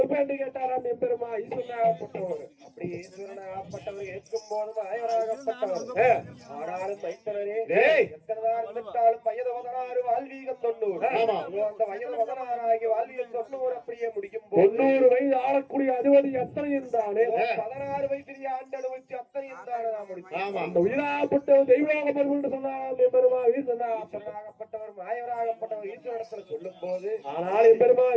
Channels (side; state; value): both; identical; correlation 1.00